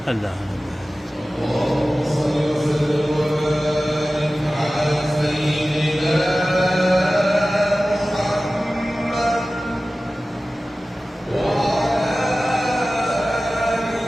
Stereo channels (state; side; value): normal; both; correlation 0.96